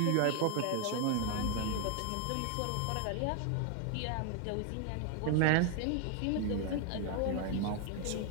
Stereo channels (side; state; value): both; different; correlation 0.00